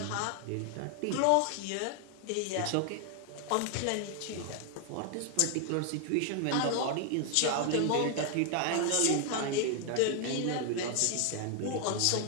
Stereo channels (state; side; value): different; both; correlation 0.00